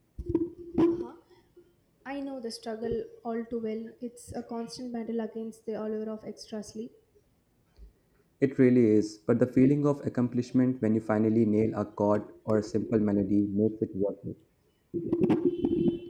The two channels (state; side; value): identical; both; correlation 1.00